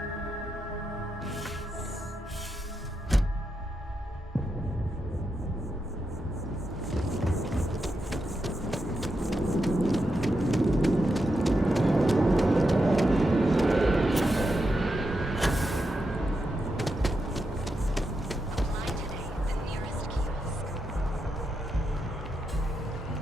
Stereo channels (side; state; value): both; normal; correlation 0.85